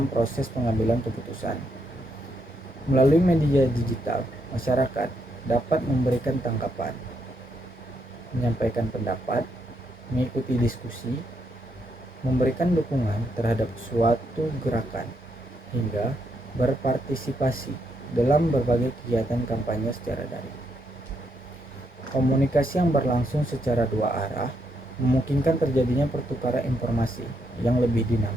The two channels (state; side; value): normal; both; correlation 0.78